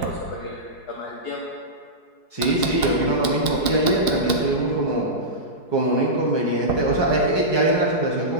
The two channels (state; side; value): late; right; 4.7 ms